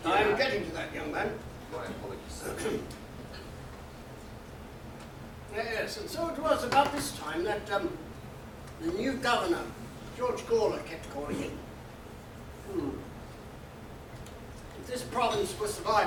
I'm getting to that, young man. My apologies. Yes, and so it was about this time that the new governor, George Gawler, kept calling in. If this province was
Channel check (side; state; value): both; identical; correlation 1.00